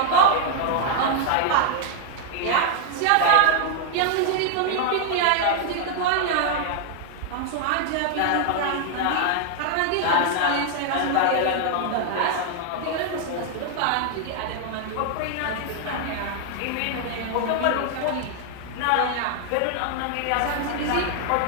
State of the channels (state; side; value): different; both; correlation 0.00